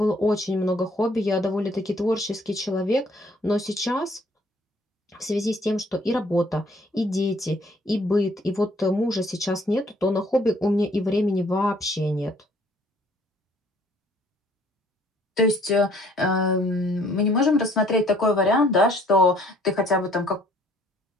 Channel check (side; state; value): both; normal; correlation 0.60